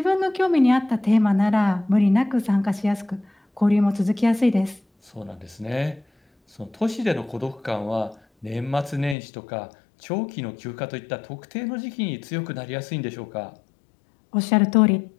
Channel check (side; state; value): right; drops out; at 9.2 s